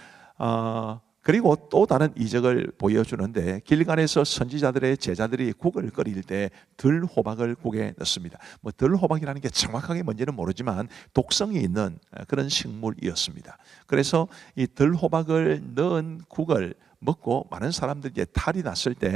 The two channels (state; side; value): quieter; left; 6.8 dB